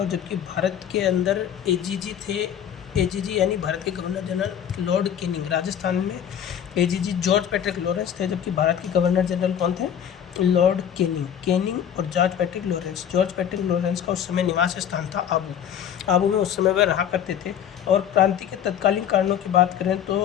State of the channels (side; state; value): right; quieter; 9.2 dB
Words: जबकि भारत के अंदर एजीजी थे। एजीजी यानी भारत के governor general Lord Canning. Rajasthan में एजीजी जॉर्ज पैट्रिक लॉरेंस थे, जबकि भारत के गवर्नर जनरल कौन थे? लॉर्ड कैनिंग और George Patrick Lawrence. George Patrick Lawrence का उस समय निवास स्थान था आबू में उस समय वह रहा करते थे। और क्रांति के तत्कालीन कारणों की बात करें